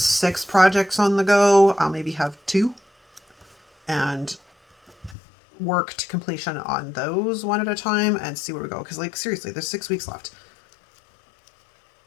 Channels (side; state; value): right; drops out; at 5.2 s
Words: projects on the go. I'll maybe have 2 and work to completion on those one at a time and see where we go. Because like, seriously, there's 6 weeks left.